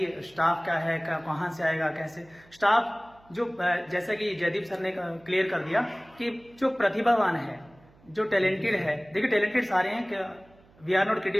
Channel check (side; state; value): right; noise; hum, 28 dB below the sound